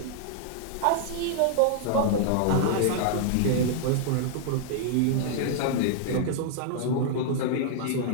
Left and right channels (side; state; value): both; different; correlation -0.01